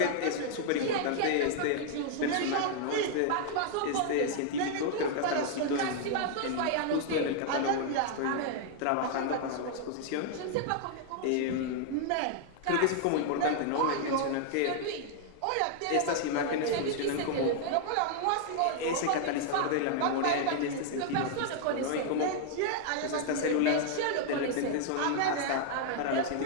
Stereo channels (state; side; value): different; both; correlation 0.00